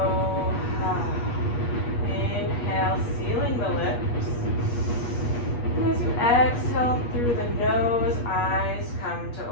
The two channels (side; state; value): right; late; 8.4 ms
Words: Inhale, sealing the lips. And as you exhale through the nose, eyes come to